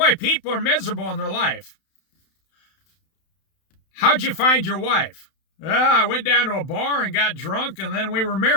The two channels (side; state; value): right; late; 31 ms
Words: people are miserable in their life. How'd you find your wife? I went down to a bar and got drunk, and then we were